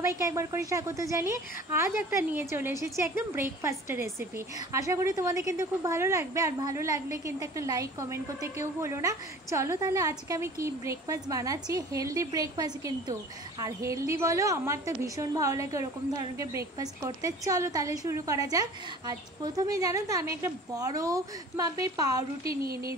একবার করে স্বাগত জানিয়ে আজ একটা নিয়ে চলে এসেছি একদম ব্রেকফাস্টের রেসিপি। আশা করি তোমাদের কিন্তু খুব ভালো লাগবে, আর ভালো লাগলে কিন্তু একটা লাইক কমেন্ট করতে কেউ ভুলো না। চলো তাহলে আজকে আমি কি ব্রেকফাস্ট বানাচ্ছি, হেলদি ব্রেকফাস্ট কিন্তু। আর হেলদি বলো, আমার তো ভীষণ ভালো লাগে ওরকম ধরনের ব্রেকফাস্ট করতে। চলো তাহলে শুরু করা যাক। আজ প্রথমে জানো তো আমি একটা বড় মাপের পাউরুটি নিয়ে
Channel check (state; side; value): normal; both; correlation 0.44